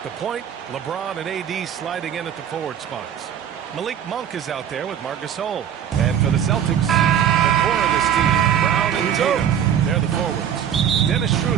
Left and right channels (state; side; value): quieter; left; 9.2 dB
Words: the point, LeBron and AD sliding in at the forward spots. Malik Monk is out there with Marc Gasol. And for the Celtics, the core of this team, Brown and Tatum. They're the forwards. Dennis